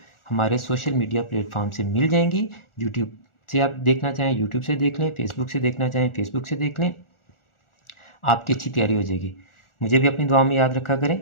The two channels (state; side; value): late; right; 1.4 ms